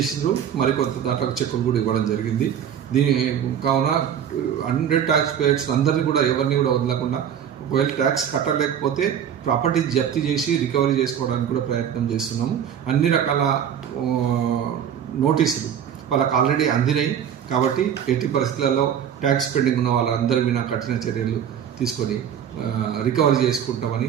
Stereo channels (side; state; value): left; quieter; 8.9 dB